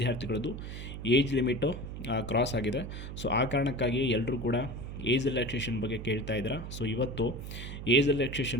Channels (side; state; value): right; noise; hum, 8 dB below the sound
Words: ಏಜ್ ಲಿಮಿಟು ಕ್ರಾಸ್ ಆಗಿದೆ. ಆ ಕಾರಣಕ್ಕಾಗಿ ಎಲ್ಲರೂ ಕೂಡ ಏಜ್ ರಿಲ್ಯಾಕ್ಸೇಷನ್ ಬಗ್ಗೆ ಕೇಳ್ತಾ ಇದ್ದಾರೆ. ಇವತ್ತು ಏಜ್